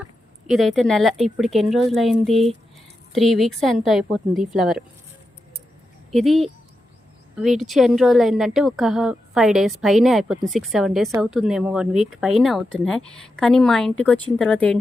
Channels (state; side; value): normal; both; correlation 0.88